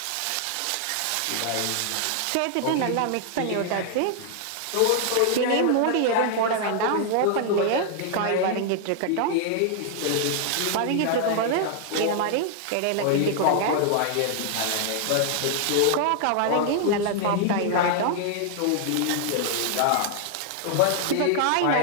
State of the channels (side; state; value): both; different; correlation 0.00